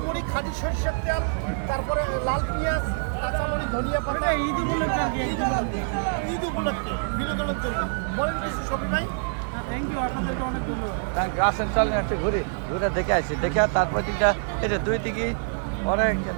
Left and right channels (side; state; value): left; silent; digital silence